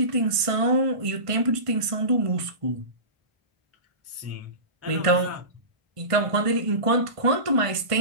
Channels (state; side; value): late; left; 1.5 ms